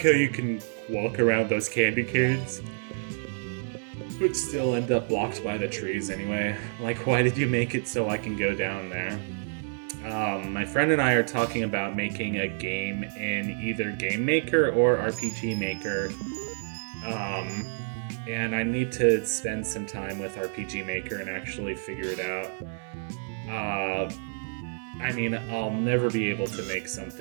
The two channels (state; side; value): silent; left; digital silence